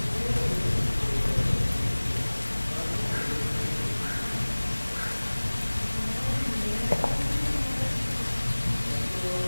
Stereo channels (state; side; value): inverted; both; correlation -1.00